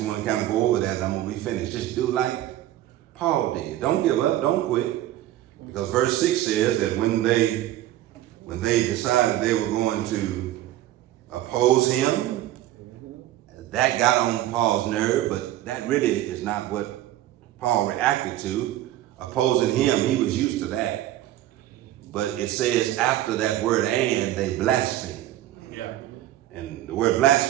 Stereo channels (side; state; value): left; quieter; 13.8 dB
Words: want to kind of go over that, and I'm going to be finished. Just do like Paul did. Don't give up. Don't quit. Because verse 6 says that when they decided they were going to oppose him, that got on Paul's nerve, but that really is not what Paul reacted to. Opposing him, he was used to that. But it says after that word "and," they blasphemed. And the word